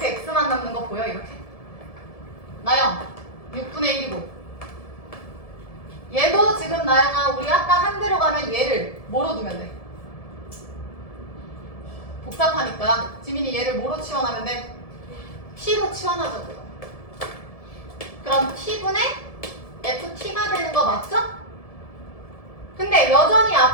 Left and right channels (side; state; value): right; late; 1.7 ms